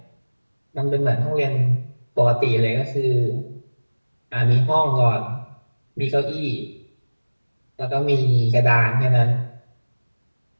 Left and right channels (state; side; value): inverted; both; correlation -1.00